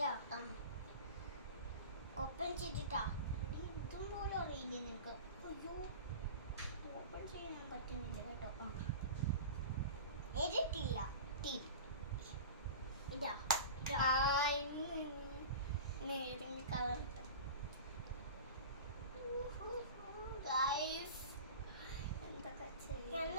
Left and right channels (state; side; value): inverted; both; correlation -0.33